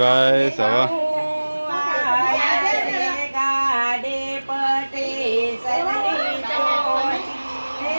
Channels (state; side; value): inverted; both; correlation -1.00